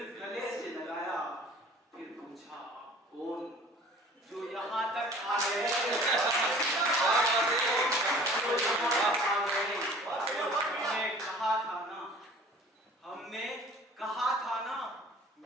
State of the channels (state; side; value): normal; both; correlation 0.48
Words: गले से लगाया। फिर पूछा आप कौन जो यहाँ तक आ गए। हमने कहा था ना, हमने कहा था ना,